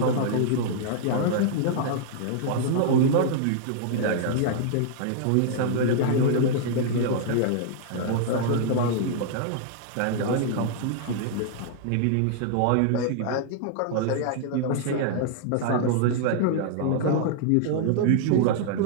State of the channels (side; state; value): both; different; correlation -0.01